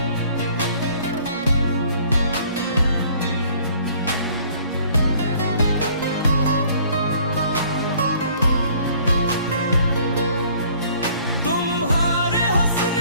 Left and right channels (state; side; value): inverted; both; correlation -0.57